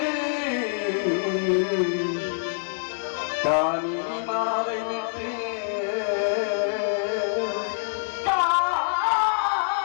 காமினி மாலை விட்டு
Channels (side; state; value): right; silent; 61 dB below the other